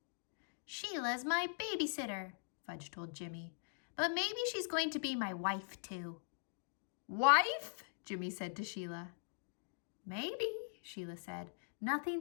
"Sheila's my babysitter," Fudge told Jimmy, "but maybe she's going to be my wife, too." "Wife?" Jimmy said to Sheila. "Maybe," Sheila said.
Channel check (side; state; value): right; silent; digital silence